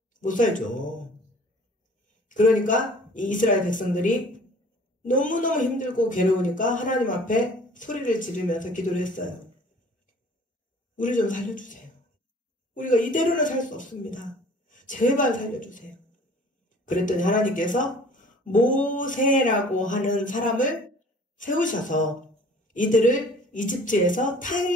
못 살죠. 그러니까 이 이스라엘 백성들이 너무너무 힘들고 괴로우니까 하나님 앞에 소리를 지르면서 기도를 했어요. 우리 좀 살려주세요. 우리가 이대로는 살 수 없습니다. 제발 살려주세요. 그랬더니 하나님께서 모세라고 하는 사람을 세우셔서 이들을 이집트에서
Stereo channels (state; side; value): normal; both; correlation 0.50